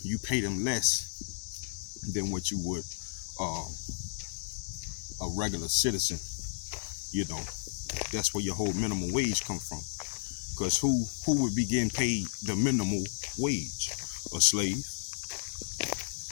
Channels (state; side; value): silent; right; digital silence